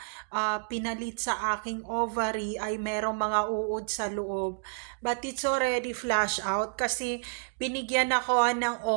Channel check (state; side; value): silent; left; digital silence